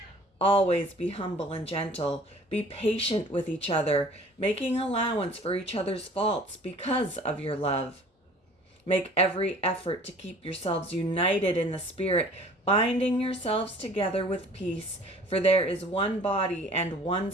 Always be humble and gentle. Be patient with each other, making allowance for each other's faults because of your love. Make every effort to keep yourselves united in the Spirit, binding yourselves together with peace, for there is one body and one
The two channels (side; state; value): both; normal; correlation 0.49